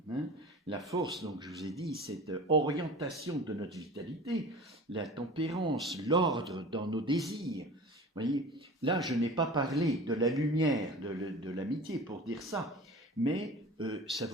Vous Hein. La force, donc je vous ai dit, cette orientation de notre vitalité, la tempérance, l'ordre dans nos désirs. Vous voyez, là, je n'ai pas parlé de la lumière, de l'amitié pour dire ça, mais ça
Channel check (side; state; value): both; normal; correlation 0.38